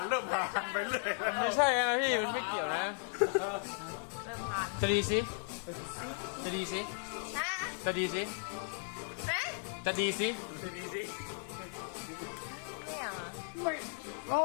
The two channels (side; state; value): right; silent; 54 dB below the other